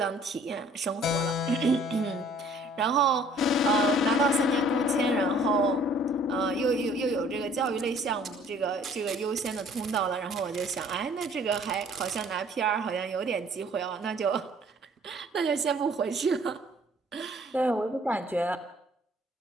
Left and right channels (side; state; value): both; normal; correlation 0.56